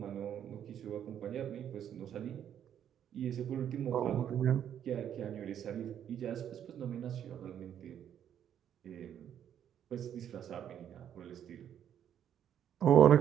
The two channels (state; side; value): quieter; left; 9.6 dB